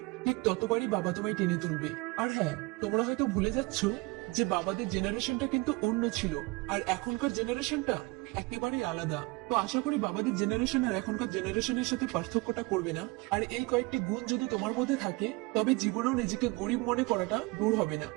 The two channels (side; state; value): left; quieter; 25.0 dB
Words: ঠিক ততবারই বাবা তোমায় টেনে তুলবে। আর হ্যাঁ, তোমরা হয়তো ভুলে যাচ্ছ যে বাবাদের জেনারেশনটা কিন্তু অন্য ছিল, আর এখনকার জেনারেশনটা একেবারেই আলাদা। তো আশা করি বাবাদের জেনারেশন আর এখনকার জেনারেশনের সাথে পার্থক্যটা করবে না। আর এই কয়েকটি গুণ যদি তোমার মধ্যে থাকে তবে জীবনেও নিজেকে গরিব মনে করাটা দূর হবে না।